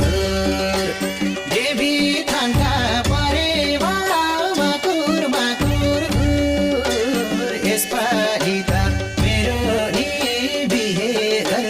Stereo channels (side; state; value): both; identical; correlation 1.00